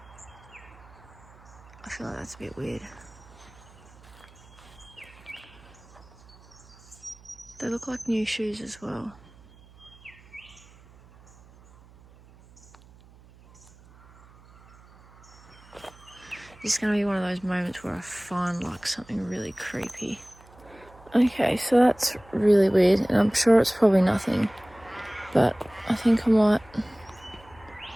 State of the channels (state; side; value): noise; right; hum, 24 dB below the sound